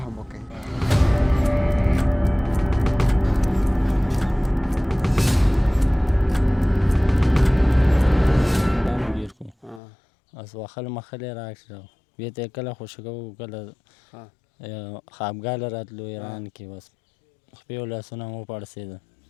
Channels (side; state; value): right; drops out; at 9.8 s